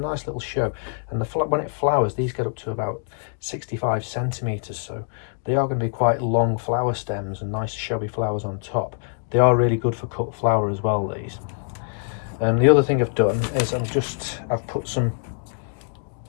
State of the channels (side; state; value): right; silent; digital silence